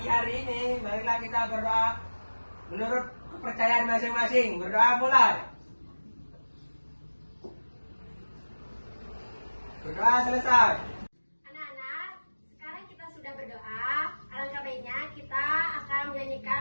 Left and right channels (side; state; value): both; inverted; correlation -1.00